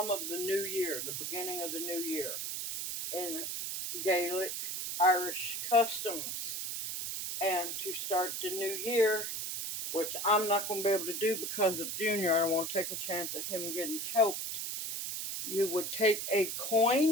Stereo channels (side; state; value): right; noise; hiss, 4 dB below the sound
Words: of the new year, the beginning of the new year, in Gaelic Irish customs. And to start the new year, which I'm not going to be able to do because of Junior, I don't want to take a chance of him getting choked. You would take a